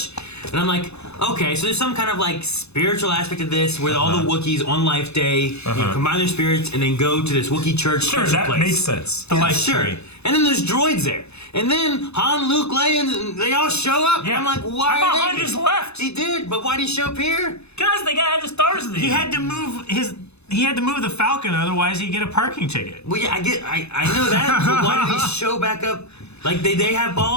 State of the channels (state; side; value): late; right; 0.80 ms